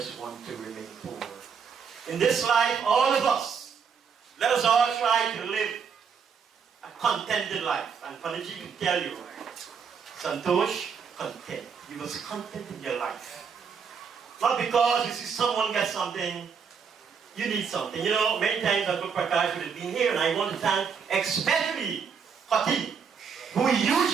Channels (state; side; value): quieter; left; 6.4 dB